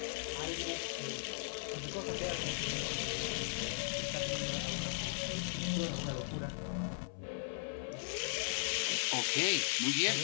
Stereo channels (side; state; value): right; silent; 53 dB below the other